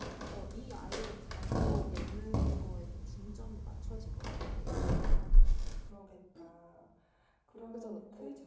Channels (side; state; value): both; identical; correlation 1.00